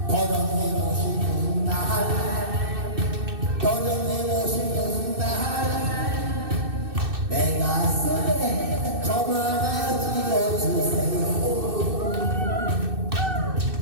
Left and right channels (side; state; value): left; late; 2.6 ms